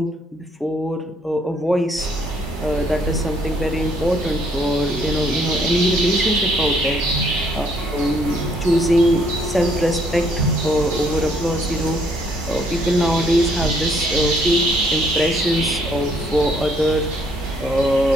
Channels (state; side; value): normal; both; correlation 0.66